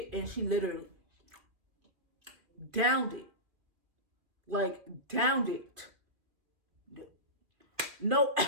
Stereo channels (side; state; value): left; late; 2.3 ms